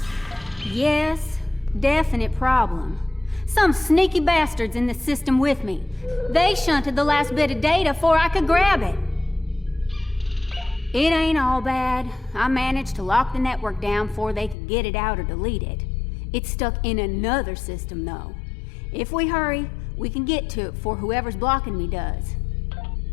Yes, definite problem. Some sneaky bastards in the system with me. They shunted the last bit of data before I could grab it. It ain't all bad. I managed to lock the network down before they could get it out or delete it. It's stuck in another system, though. If we hurry, we can get to it before whoever's blocking me does.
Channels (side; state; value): right; drops out; at 14.6 s